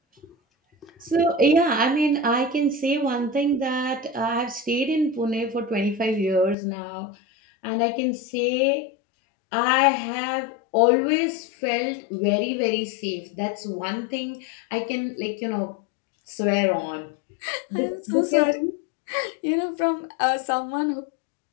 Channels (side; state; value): right; drops out; at 6.6 s